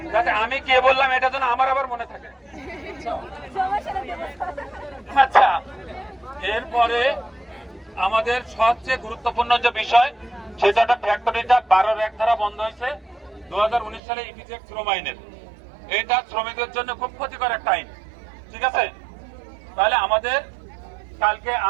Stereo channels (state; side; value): drops out; left; at 14.0 s